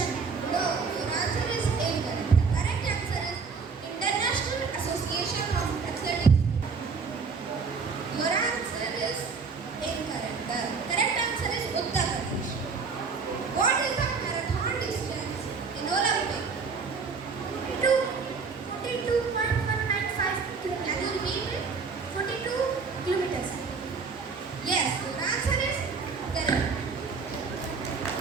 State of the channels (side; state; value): left; quieter; 5.1 dB